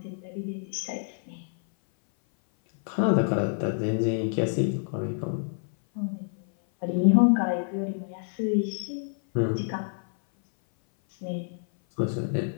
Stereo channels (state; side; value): silent; right; 57 dB below the other